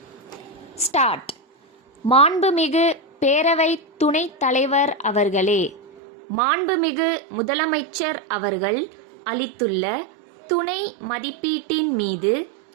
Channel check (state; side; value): drops out; left; at 5.8 s